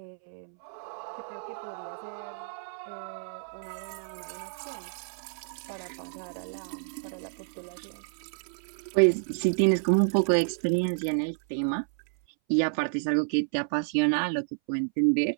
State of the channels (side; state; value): left; silent; 58 dB below the other